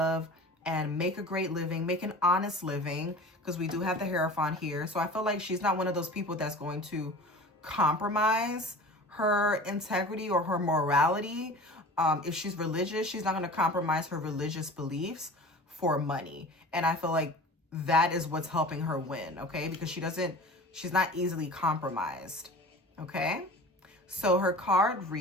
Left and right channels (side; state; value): both; normal; correlation 0.39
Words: and make a great living, make an honest living, because we do have the Hierophant here. So I feel like she's not one of those people that's going to compromise her integrity or her morality. If she's religious, she's not going to compromise her religious beliefs for money. And I feel like that is what's helping her win, okay? Because she's not easily compromised, okay? So her card